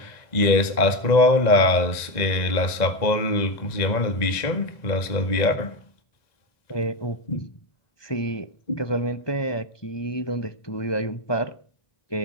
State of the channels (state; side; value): late; right; 1.9 ms